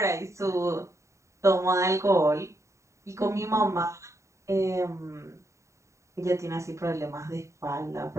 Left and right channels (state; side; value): late; left; 0.14 ms